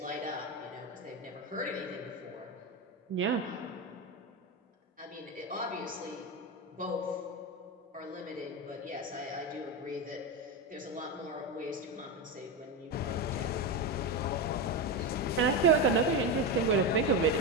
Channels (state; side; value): normal; both; correlation 0.14